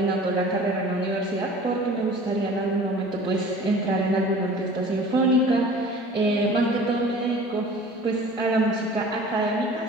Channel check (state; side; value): normal; both; correlation 0.44